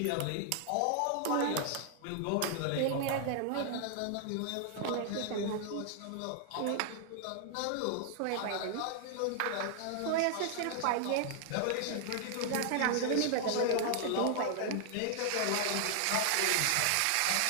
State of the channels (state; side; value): different; both; correlation 0.00